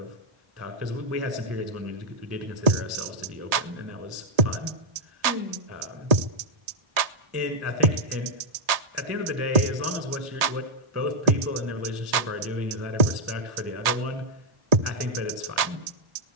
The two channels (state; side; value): late; left; 1.7 ms